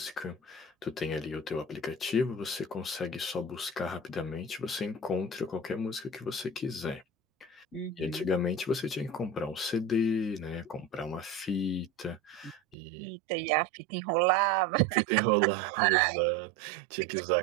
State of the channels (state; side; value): drops out; left; at 12.8 s